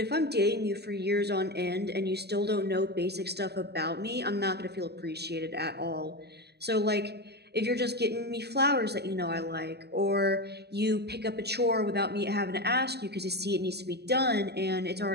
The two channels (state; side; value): late; left; 0.47 ms